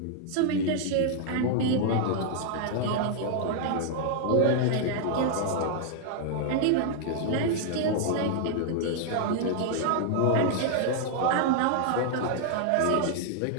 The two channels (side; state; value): both; different; correlation -0.01